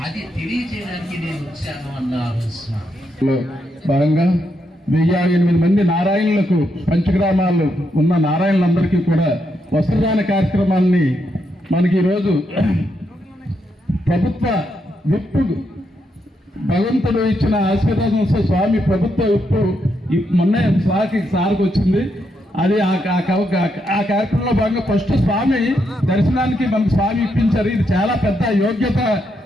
అది తెలియజేయడానికి నేను వచ్చాను అన్నారు స్వామి. భాగంగా 1008 మంది నారాయణులకు పంచగ్రామాల్లో ఉన్న నారాయణులందరికీ కూడా వస్త్రదాన కార్యక్రమాన్ని మనకి ఈరోజు ప్రభుత్వ విప్పు భగవంతుడు ఇచ్చిన ఆశీర్వాదంతో స్వామి ప్రభుత్వ విప్పు మొన్న సార్కి వచ్చింది. అది ఆ కార్యక్రమంలో భాగంగా ఫస్ట్ స్వామి దర్శనానికి మనకు స్వామి ఇప్పించారు. ఇది చాలా పెద్ద యోగ్యత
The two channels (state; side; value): normal; both; correlation 0.80